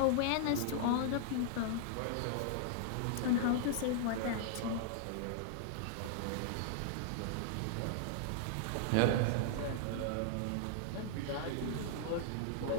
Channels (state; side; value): different; both; correlation -0.01